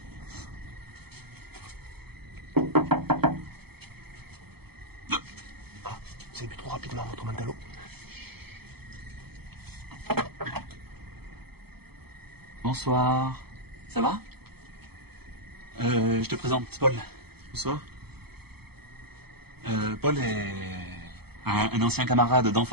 Ah, vous avez bu trop rapidement votre Mentalo. Bonsoir. Ça va? Je te présente Paul. Bonsoir. Paul est un ancien camarade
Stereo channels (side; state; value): left; late; 0.96 ms